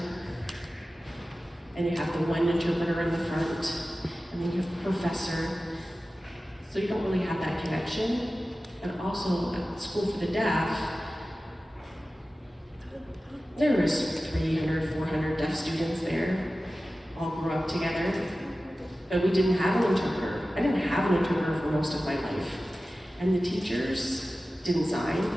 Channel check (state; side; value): normal; both; correlation 0.95